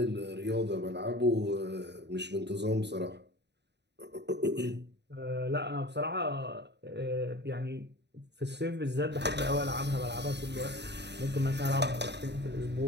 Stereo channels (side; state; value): left; late; 0.50 ms